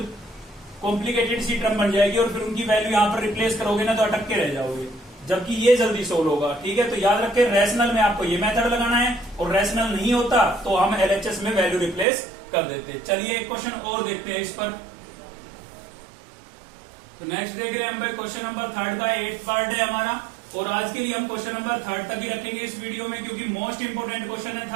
कॉम्प्लिकेटेड सी टर्म बन जाएगी, और फिर उनकी वैल्यू यहाँ पर रिप्लेस करोगे ना तो अटक के रह जाओगे, जबकि ये जल्दी सोल्व होगा। ठीक है, तो याद रखें रैशनल में आपको ये मेथड लगाना है, और रैशनल नहीं होता तो हम एलएचएस में वैल्यू रिप्लेस कर देते। चलिए एक क्वेश्चन और देखते हैं इस पर। तो नेक्स्ट देख रहे हैं हम भाई क्वेश्चन नंबर 3 का 8th पार्ट है हमारा, और आज के लिए हम क्वेश्चन नंबर 3 तक ही रखेंगे इस वीडियो में, क्योंकि मोस्ट इंपोर्टेंट क्वेश्चन है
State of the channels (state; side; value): drops out; left; at 12.1 s